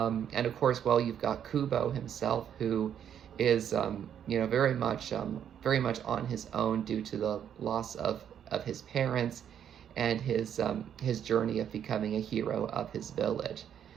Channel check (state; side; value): quieter; left; 9.1 dB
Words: of course, well, you've got Kubo himself, who is, very much on his own due to the loss of his parents and his journey of becoming a hero of his village.